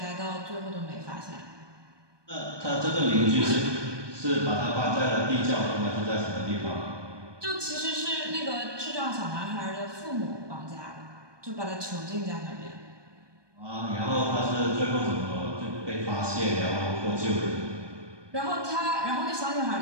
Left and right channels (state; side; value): late; left; 1.2 ms